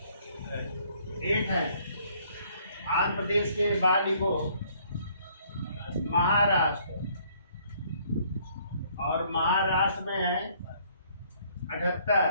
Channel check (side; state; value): both; inverted; correlation -0.63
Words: है। आंध्र प्रदेश के बाद लिखो महाराष्ट्र, और महाराष्ट्र में है